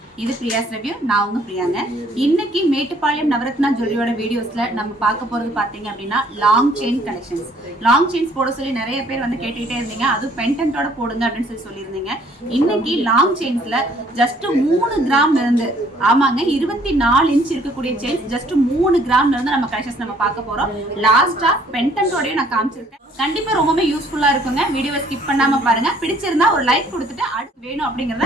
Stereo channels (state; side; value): normal; both; correlation 0.61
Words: இது பிரியாஸ் review. நான் உங்க பிரியாங்க. இன்னைக்கு மேட்டுப்பாளையம் நவரத்னா ஜுவல்லரியோட வீடியோஸ்ல நம்ம பார்க்க போறது பாத்தீங்க அப்படின்னா long chain collections. Long chains போட சொல்லி நிறைய பேர் வந்து கேட்டுக்கிட்டே இருந்தீங்க. அதுவும் பெண்டன்ட்டோட போடுங்க அப்படின்னு சொல்லியிருந்தீங்க. இன்னைக்கு லாங் செயின்ஸ்ல ஜஸ்ட் 3 கிராம்ல இருந்து, ஆமாங்க 24 இன்ச் இருக்கக்கூடிய செயின்ஸ் ஜஸ்ட் 3 கிராம்ல இருந்து நம்ம கலெக்ஷன்ஸ் நம்ம பார்க்க போறோம். லாஸ்டா பெண்டன்ட்டோடய நான் காமிச்சிருக்கேன். கண்டிப்பா ரொம்பவே யூஸ்ஃபுல்லா இருக்குங்க. வீடியோவை ஸ்கிப் பண்ணாம பாருங்க. பிடிச்சிருந்தா ஒரு லைக் கொடுத்துட்டு அடுத்து வேணும்